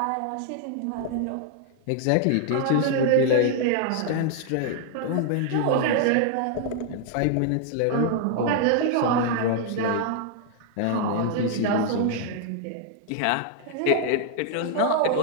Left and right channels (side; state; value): both; different; correlation 0.00